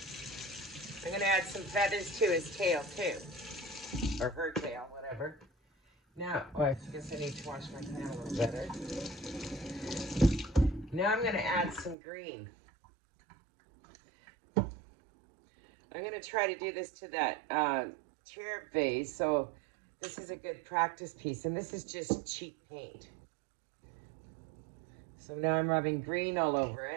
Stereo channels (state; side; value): drops out; left; at 12.0 s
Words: I'm gonna add some feathers to his tail too. Or her tail, whatever. Now, oh, I guess I need to wash my pan a little better. Now I'm gonna add some green. I'm gonna try to do this to that chair vase. So this is a good practice piece, and this is just cheap paint. So now I'm rubbing green all over